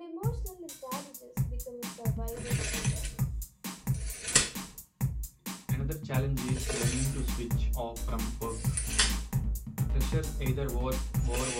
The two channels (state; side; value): identical; both; correlation 1.00